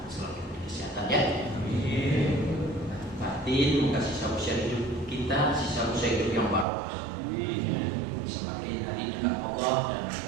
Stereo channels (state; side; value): drops out; left; at 6.7 s